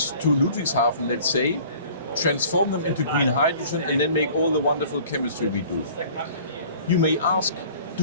to Ludwigshafen, let's say, transform them into green hydrogen, and then make all the wonderful chemistry we do. You may ask,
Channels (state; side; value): inverted; both; correlation -0.49